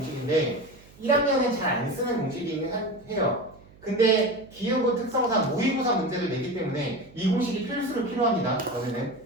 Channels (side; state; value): right; noise; hum, 24 dB below the sound